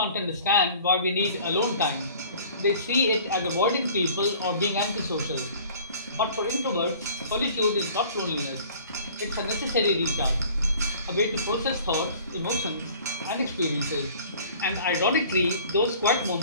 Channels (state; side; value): inverted; both; correlation -0.49